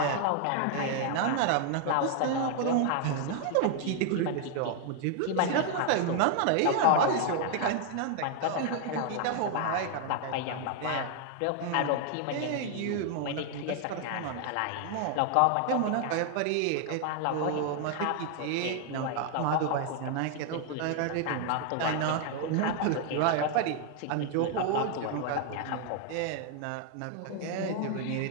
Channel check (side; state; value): both; different; correlation 0.00